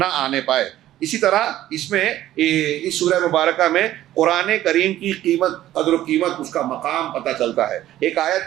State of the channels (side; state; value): left; quieter; 13.6 dB